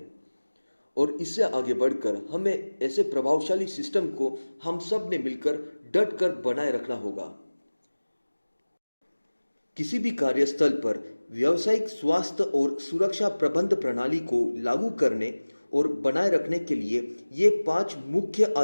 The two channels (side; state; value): both; inverted; correlation -1.00